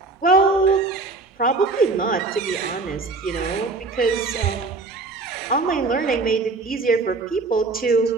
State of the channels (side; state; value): left; quieter; 3.7 dB